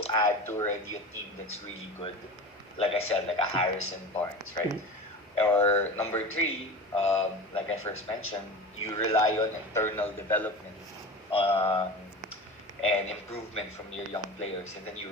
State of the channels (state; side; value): normal; both; correlation 0.31